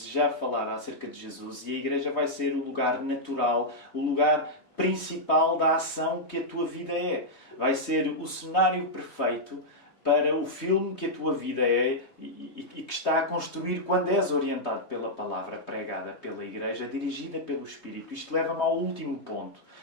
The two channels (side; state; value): right; late; 3.2 ms